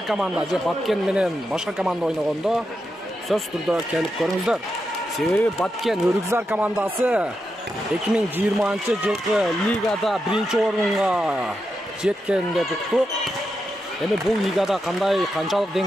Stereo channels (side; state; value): both; normal; correlation 0.86